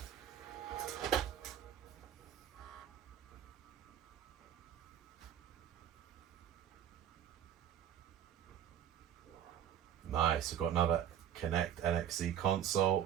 Nice, we've got another Connect NXE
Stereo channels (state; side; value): quieter; left; 10.0 dB